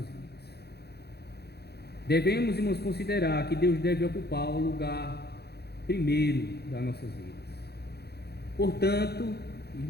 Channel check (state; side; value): late; right; 0.48 ms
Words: Devemos, irmãos, considerar que Deus deve ocupar o lugar primeiro das nossas vidas. Portanto,